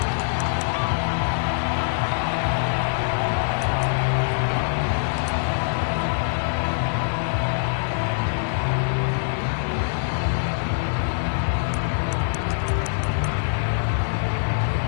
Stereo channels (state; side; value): silent; right; digital silence